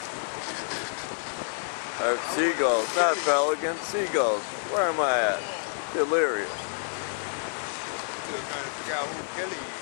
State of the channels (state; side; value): silent; right; digital silence